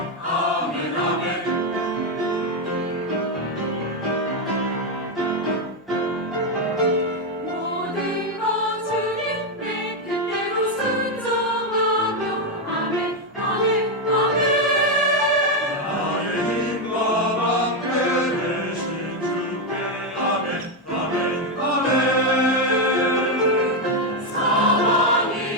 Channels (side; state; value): both; normal; correlation 0.05